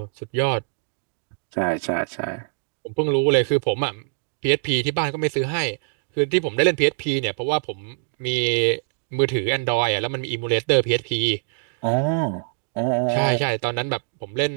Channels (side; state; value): left; silent; digital silence